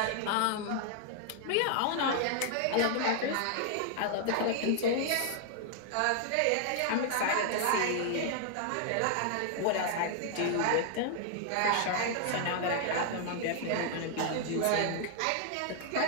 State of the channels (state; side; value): different; both; correlation 0.00